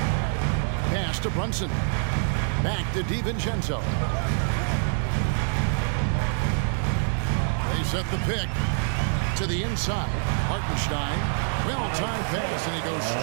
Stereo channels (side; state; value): left; silent; 61 dB below the other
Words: Pass to Brunson. Back to DiVincenzo. They set the pick to the inside. Hartenstein, well-timed pass, and he goes